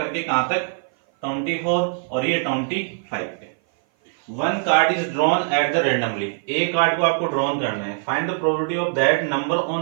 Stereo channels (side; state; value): left; silent; 56 dB below the other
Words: कहां तक, 24 और ये 25 पे। 1 card is drawn at the randomly, एक कार्ड को आपको ड्रॉन करना है। Find the probability of that number